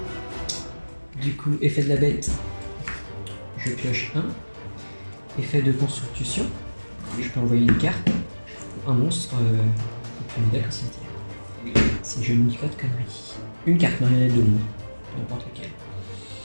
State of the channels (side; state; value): both; inverted; correlation -1.00